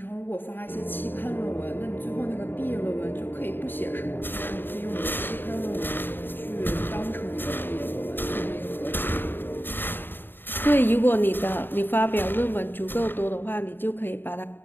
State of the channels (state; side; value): late; right; 0.096 ms